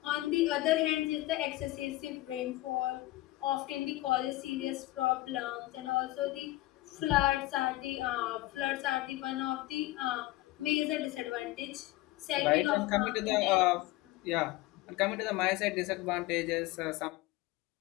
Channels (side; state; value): right; quieter; 17.8 dB